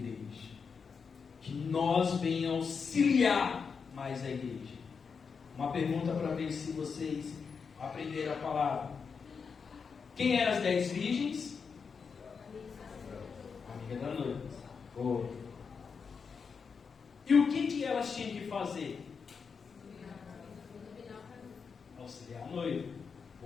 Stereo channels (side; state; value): right; quieter; 5.7 dB